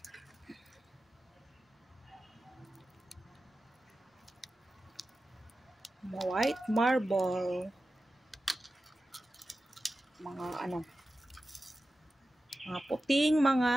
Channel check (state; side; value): normal; both; correlation 0.93